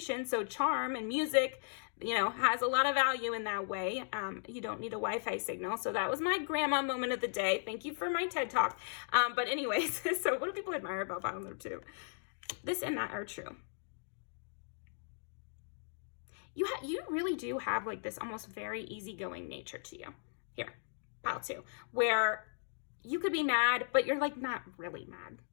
So charm and music, you know, has a lot of value in that way. You don't need a Wi-Fi signal. So that was my grandma moment of the day. Thank you for my TED Talk. But anyways, so what do people admire about pile number 2? This and that are true. You really do have like this almost very easygoing nature to you. Here, pile 2, where you could be mad, but you're like not really mad.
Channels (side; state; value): right; silent; digital silence